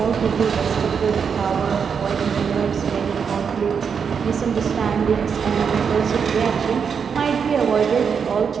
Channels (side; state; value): left; quieter; 6.5 dB